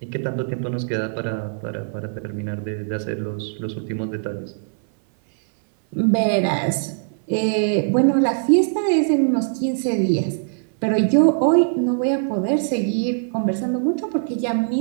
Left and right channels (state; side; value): silent; left; 58 dB below the other